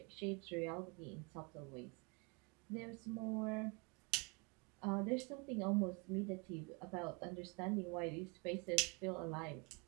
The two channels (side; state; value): left; quieter; 29.9 dB